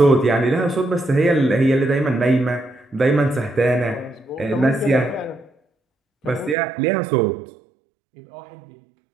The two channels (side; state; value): left; drops out; at 6.6 s